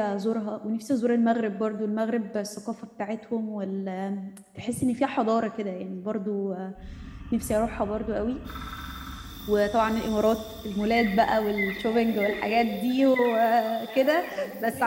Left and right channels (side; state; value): both; identical; correlation 1.00